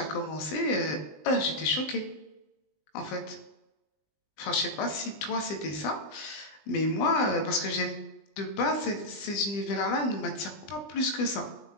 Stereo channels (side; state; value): right; late; 20 ms